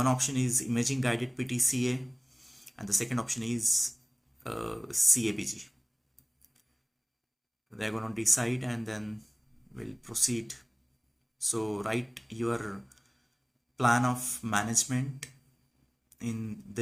option is imaging guided PTCA, and the second option is CABG. they're going to decide and then we'll proceed. So write your plan of management in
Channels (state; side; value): identical; both; correlation 1.00